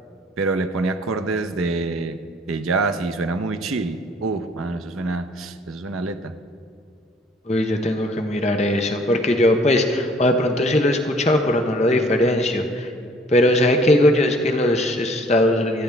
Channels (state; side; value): normal; both; correlation 0.57